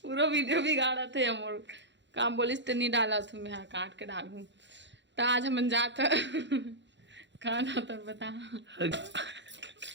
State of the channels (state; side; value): late; left; 0.52 ms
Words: पूरा वीडियो बिगाड़ा थे हम। काम बोलिस तो नहीं डाला था, मैं काट के डालूं। तो आज हम जाता कहाँ जाता बता।